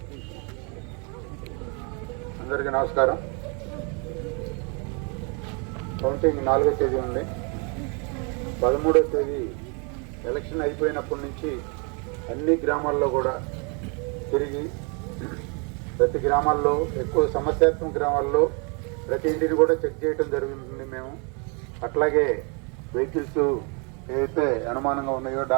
అందరికీ నమస్కారం. కౌంటింగ్ 4వ తేదీ ఉంది. 13వ తేదీ ఎలక్షన్ అయిపోయినప్పటి నుంచి అన్ని గ్రామాల్లో కూడా తిరిగి ప్రతి గ్రామాల్లో, ఎక్కువ సమస్యాత్మక గ్రామాల్లో ప్రతి ఇంటిని కూడా చెక్ చేయడం జరుగుతుంది మేము. అట్లాగే వెహికల్స్ ఏవైతే అనుమానంగా ఉన్నాయో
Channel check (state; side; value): quieter; left; 34.7 dB